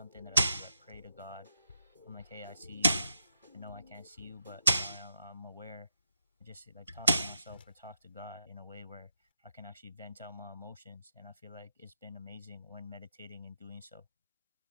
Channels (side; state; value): both; inverted; correlation -0.85